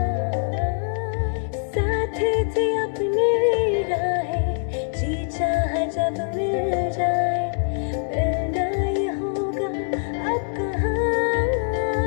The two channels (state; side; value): silent; right; digital silence